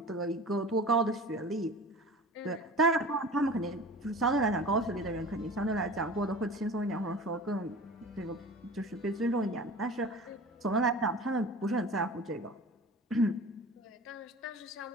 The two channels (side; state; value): both; normal; correlation 0.38